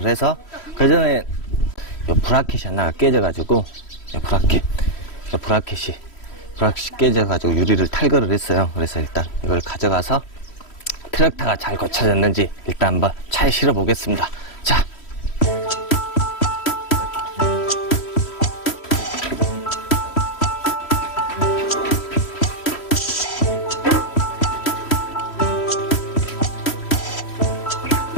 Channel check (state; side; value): late; right; 3.1 ms